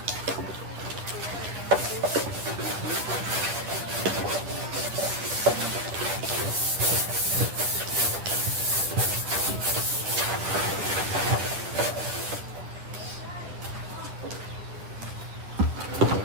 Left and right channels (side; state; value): left; late; 10 ms